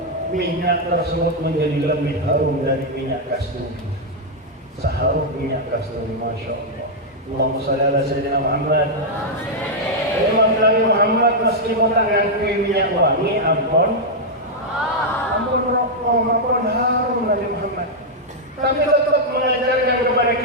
Minyak tersebut menjadi lebih harum dari minyak kasturi. Seharum minyak kasturi, masya Allah. Allahumma shalli ala sayyidina Muhammad. Imam Nabi Muhammad meskipun tangan minyak wangi, ampun rokok, ampun harum Nabi Muhammad. Tapi tetap mengajarkan kepada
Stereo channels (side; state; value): both; normal; correlation -0.03